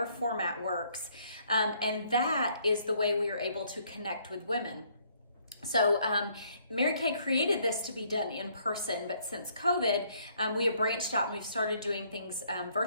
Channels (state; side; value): inverted; both; correlation -0.66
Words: format works. And that is the way we are able to connect with women. So Mary Kay created this to be done in person, but since COVID, we have branched out and we've started doing things